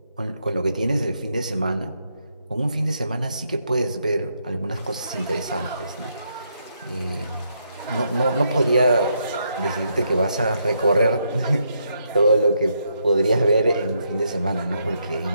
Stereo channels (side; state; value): both; inverted; correlation -0.78